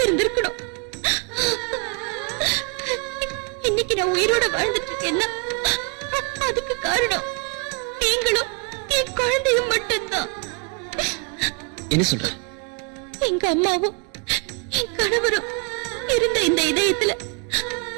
இன்னைக்கு நான் உயிரோட வாழ்ந்துட்டு இருக்கேன்னா அதுக்கு காரணம் நீங்களும் என் குழந்தையும் மட்டும்தான். என்ன சொல்ற? எங்க அம்மாவும் என் கணவரும் இருந்த இந்த இதயத்துல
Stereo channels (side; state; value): left; quieter; 33.8 dB